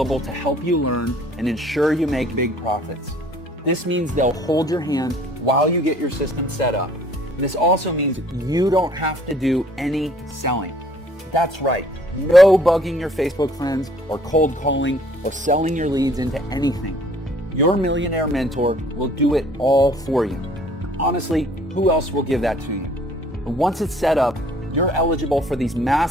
to help you learn and ensure you make big profits. This means they'll hold your hand while you get your system set up. This also means you don't have to do any selling. That's right. No bugging your Facebook friends or cold calling or selling your leads into anything. Your millionaire mentor will do it all for you. Honestly, who else will give that to you? And once it's set up, you're eligible for these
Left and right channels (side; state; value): both; normal; correlation 0.57